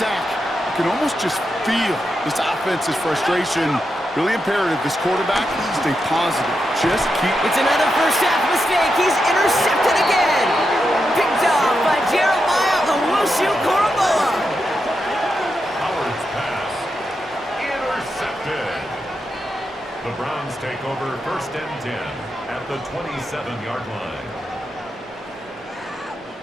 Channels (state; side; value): normal; both; correlation 0.86